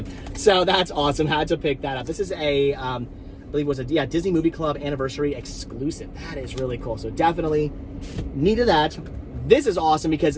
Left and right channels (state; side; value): identical; both; correlation 1.00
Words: so that's awesome. Had to pick that up. This is a I believe it was a Disney Movie Club anniversary exclusive. That is really cool. So definitely needed that. This is awesome because